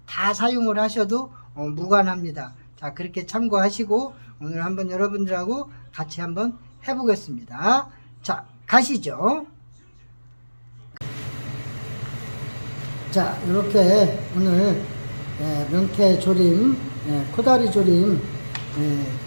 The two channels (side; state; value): both; inverted; correlation -1.00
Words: 다 사용을 하셔도 무관합니다. 자, 그렇게 참고하시고 오늘 한번 여러분들하고 같이 한번 해보겠습니다. 자, 가시죠. 자, 이렇게 오늘 명태조림, 코다리조림